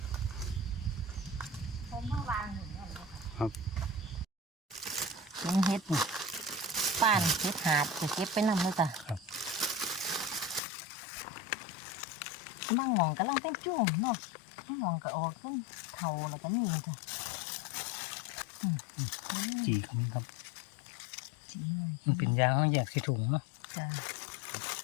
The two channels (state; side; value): drops out; right; at 10.6 s